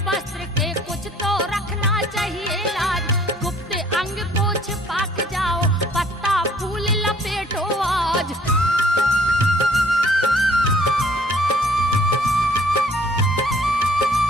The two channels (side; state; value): both; normal; correlation 0.58